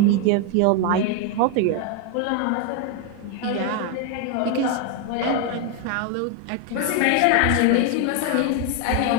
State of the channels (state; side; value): different; both; correlation 0.01